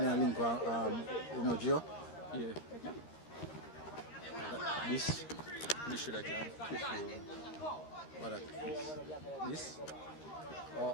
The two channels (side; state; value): right; late; 13 ms